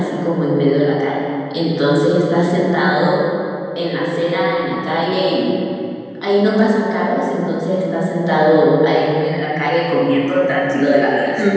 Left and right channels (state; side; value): identical; both; correlation 1.00